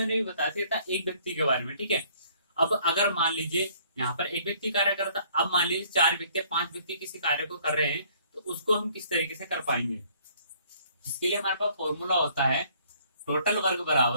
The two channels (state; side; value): inverted; both; correlation -0.60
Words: भी बताया था एक व्यक्ति के बारे में। ठीक है, अब अगर मान लीजिए यहाँ पर एक व्यक्ति कार्य कर रहा था, अब मान लीजिए 4 व्यक्ति 5 व्यक्ति किसी कार्य को कर रहे हैं, तो उसको हम किस तरीके से कर पाएंगे। इसके लिए हमारे पास फॉर्मूला होता है टोटल वर्क